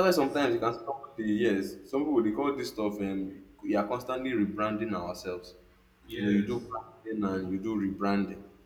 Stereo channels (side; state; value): both; identical; correlation 1.00